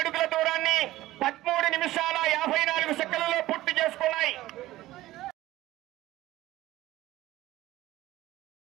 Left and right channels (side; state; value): left; quieter; 16.2 dB